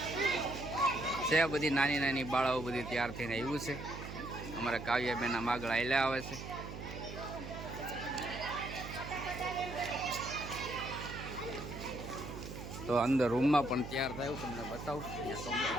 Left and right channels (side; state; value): right; noise; hum, 9 dB below the sound